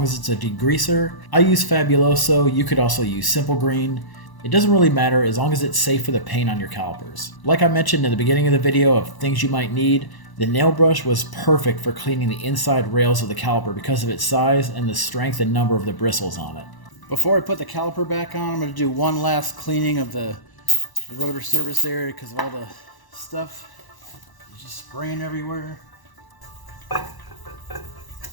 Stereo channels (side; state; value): right; late; 1.0 ms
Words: as it's a degreaser. I use Fabuloso. You could also use Simple Green. It doesn't really matter as long as it's safe for the paint on your calipers. Like I mentioned in the beginning of the video of things you might need, the nail brush was perfect for cleaning the inside rails of the caliper because of its size and the strength and number of the bristles on it. Before I put the caliper back on, I'm going to do one last cleaning of the rotor surface area because of all the stuff just spraying everywhere.